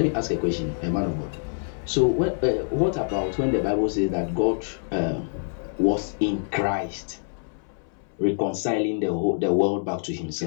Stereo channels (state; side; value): silent; right; 61 dB below the other